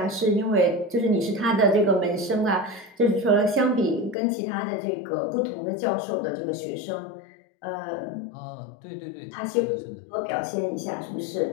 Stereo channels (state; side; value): drops out; right; at 4.2 s